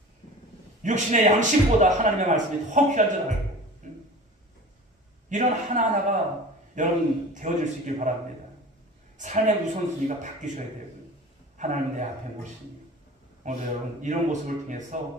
육신의 양식보다 하나님의 말씀이 더 귀한 줄 알고 이런 하나하나가 여러분 되어질 수 있길 바랍니다. 삶의 우선순위가 바뀌셔야 되고요. 하나님 내 앞에 모시니 오늘 여러분 이런 모습을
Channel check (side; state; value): both; normal; correlation 0.39